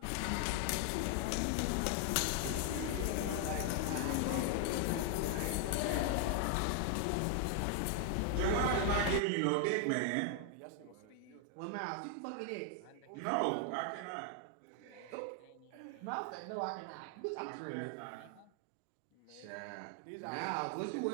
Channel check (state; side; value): different; both; correlation 0.00